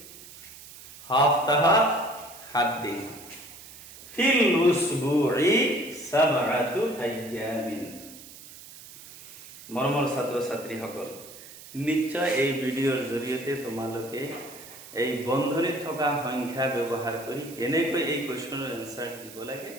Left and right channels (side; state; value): right; noise; hiss, 17 dB below the sound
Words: Haftaha 7 দিন। ফিল উসবুই 7 আইয়ামিন। মৰমৰ ছাত্ৰ ছাত্ৰীসকল, নিশ্চয় এই ভিডিঅ'ৰ জৰিয়তে তোমালোকে এই বন্ধনীত থকা সংখ্যা ব্যৱহাৰ কৰি কেনেকৈ এই কুৱেশ্যনৰ এনচাৰ দিব লাগে